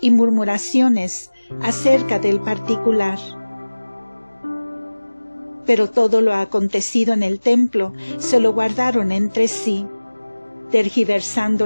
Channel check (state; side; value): inverted; both; correlation -1.00